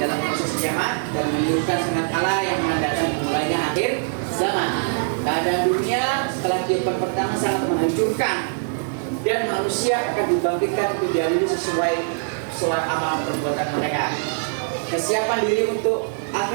proses kiamat dan menunjukkan sangat Allah yang menandakan mulainya akhir zaman. Keadaan dunia setelah kehidupan pertama sangat menghancurkan dan manusia akan dibangkitkan untuk diadili sesuai amal perbuatan mereka. Kesiapan diri untuk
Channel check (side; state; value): left; silent; digital silence